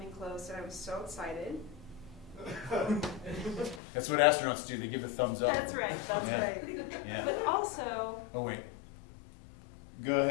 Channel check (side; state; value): right; drops out; at 3.8 s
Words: close and I was so excited. That's what astronauts do. They give a thumbs up. That's right, that's Yeah. right. Yeah. But also, Oh wait. Go